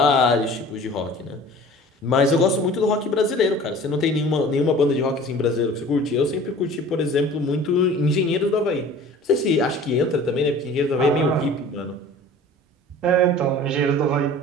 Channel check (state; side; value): normal; both; correlation 0.44